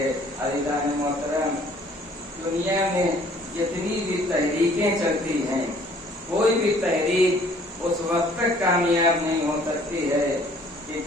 عزیزان محترم، دنیا میں جتنی بھی تحریکیں چلتی ہیں، کوئی بھی تحریک اس وقت تک کامیاب نہیں ہو سکتی ہے کہ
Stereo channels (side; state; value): both; normal; correlation 0.57